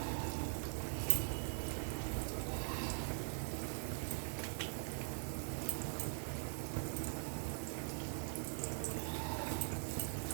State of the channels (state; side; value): silent; left; digital silence